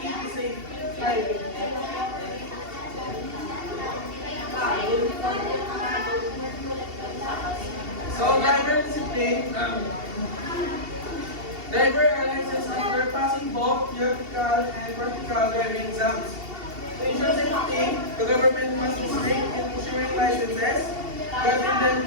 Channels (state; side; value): late; left; 2.7 ms